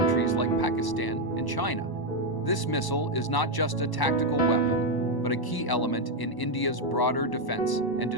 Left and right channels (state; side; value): late; right; 1.0 ms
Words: like Pakistan and China. This missile is not just a tactical weapon, but a key element in India's broader defense and